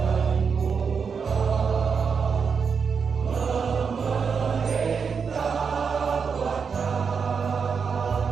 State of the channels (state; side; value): quieter; left; 5.9 dB